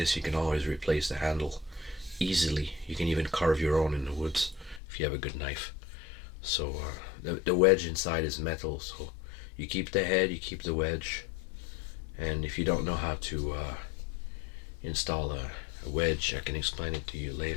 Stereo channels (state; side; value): drops out; right; at 4.8 s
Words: you can always replace the handle easily. You can even carve your own in the woods if you have a good knife. So the wedge inside is metal, so you keep the head, you keep the wedge. And if you don't know how to install a wedge, I can explain it to you